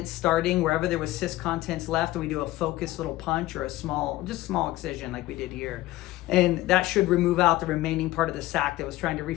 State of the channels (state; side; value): quieter; right; 16.9 dB